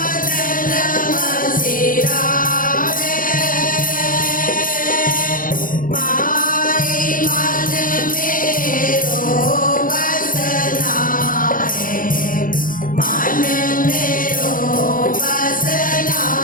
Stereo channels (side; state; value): right; late; 0.40 ms